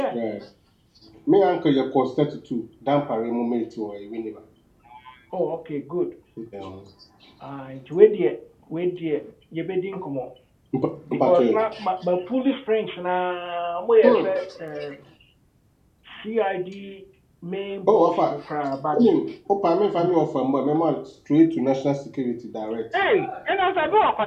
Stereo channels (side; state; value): both; identical; correlation 1.00